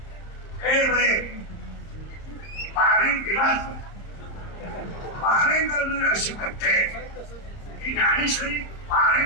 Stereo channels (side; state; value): right; late; 31 ms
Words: पारायण दिलाच पारायण करणारे असे बच्चे की ज्ञानेश्वरी